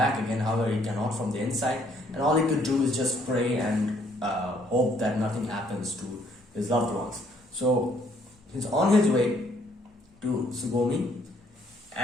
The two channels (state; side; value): normal; both; correlation 0.66